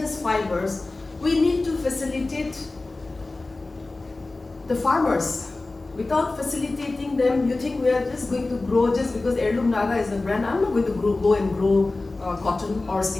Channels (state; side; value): quieter; right; 3.2 dB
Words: fibers, we need to facilitate the farmers. Without facilitating them, you think we are just going to grow just because Heirloom Naga is a brand. I'm not going to go and grow cotton or